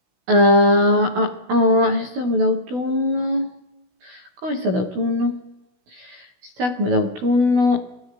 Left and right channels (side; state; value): left; late; 16 ms